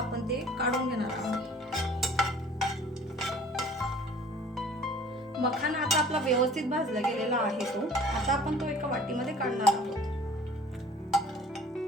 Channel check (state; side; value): normal; both; correlation 0.49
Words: ते काढून घेणार आहोत। मखाना आता आपला व्यवस्थित भाजला गेलेला आहे तो। आता आपण तो एका वाटीमध्ये काढणार आहोत।